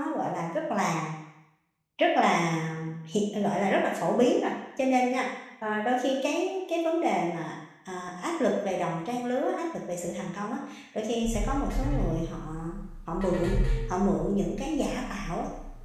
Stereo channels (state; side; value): identical; both; correlation 1.00